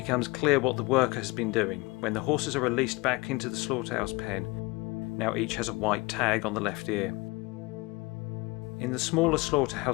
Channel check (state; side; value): quieter; right; 24.2 dB